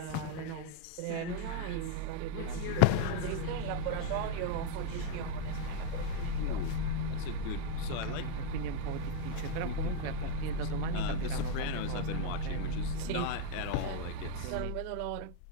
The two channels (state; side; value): different; both; correlation 0.00